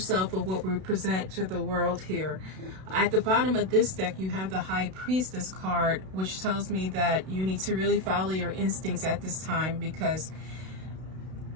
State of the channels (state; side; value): late; left; 32 ms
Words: of what we present to the world here. At the bottom of this deck, you have the High Priestess card, which tells me that you need to really follow your instincts at this time, because